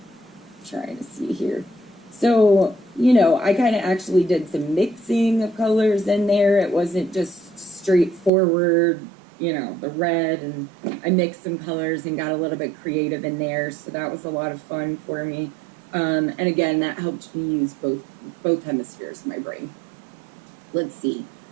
trying to see here. So, I kind of actually did some mixing of colors in there. It wasn't just straightforward, the red, and I mixed some colors and got a little bit creative in there. So that was a lot of fun for me. And again, that helped me use both hemispheres of my brain. Let's see.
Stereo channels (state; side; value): drops out; left; at 8.3 s